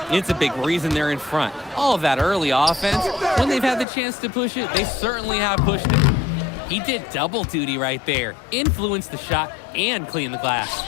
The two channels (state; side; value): drops out; right; at 3.9 s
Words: It's a big reason they're in front. All of that early offense, when they've had the chance to push it, they certainly have pushed it. He did double duty right there. Influenced the shot and cleaned the glass.